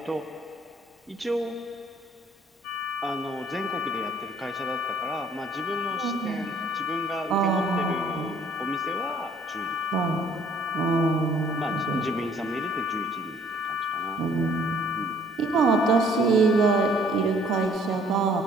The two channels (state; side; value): normal; both; correlation 0.60